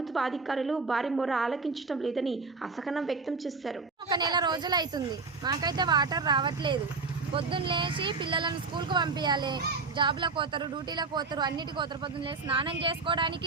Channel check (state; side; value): quieter; left; 4.3 dB